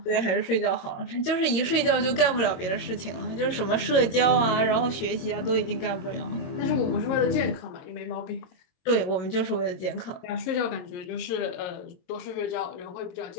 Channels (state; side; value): late; right; 22 ms